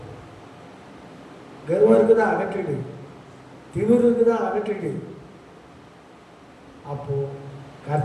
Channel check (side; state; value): both; identical; correlation 1.00